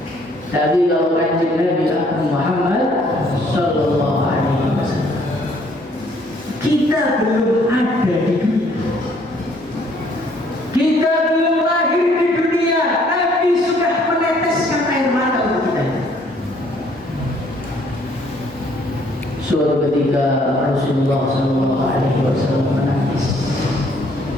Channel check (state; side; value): normal; both; correlation 0.63